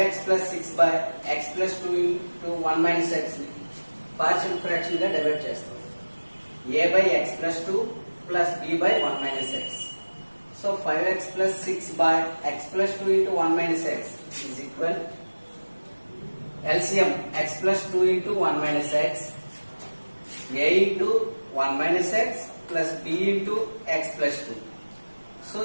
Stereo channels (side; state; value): both; inverted; correlation -1.00